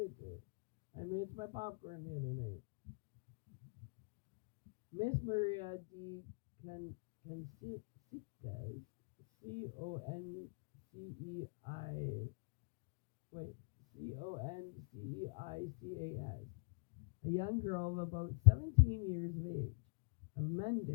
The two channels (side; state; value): right; quieter; 39.3 dB